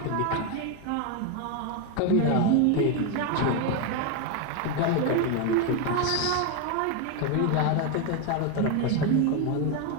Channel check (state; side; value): different; both; correlation 0.02